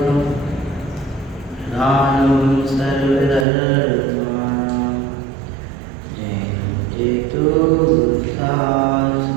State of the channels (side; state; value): left; drops out; at 3.5 s